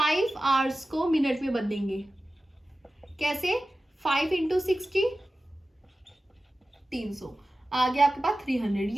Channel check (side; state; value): both; normal; correlation 0.95